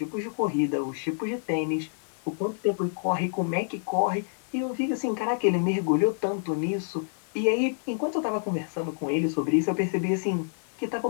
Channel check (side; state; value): right; silent; 60 dB below the other